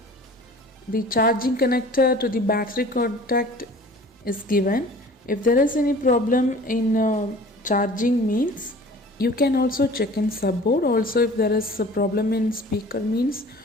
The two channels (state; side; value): normal; both; correlation 0.45